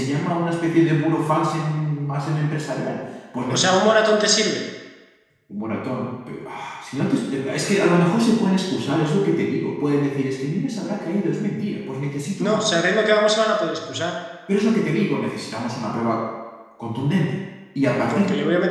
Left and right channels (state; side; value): identical; both; correlation 1.00